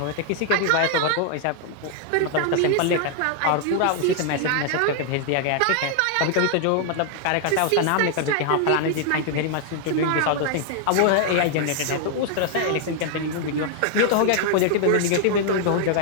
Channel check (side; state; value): both; different; correlation 0.00